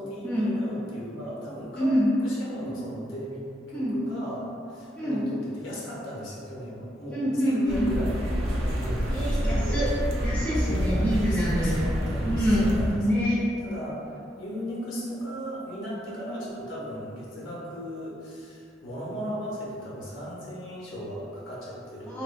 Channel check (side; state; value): both; normal; correlation 0.81